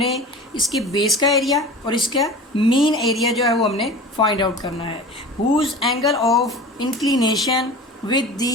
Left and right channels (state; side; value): normal; both; correlation 0.37